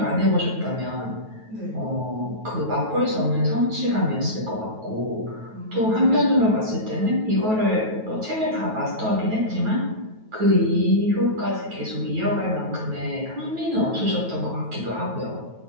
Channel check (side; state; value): left; late; 9.2 ms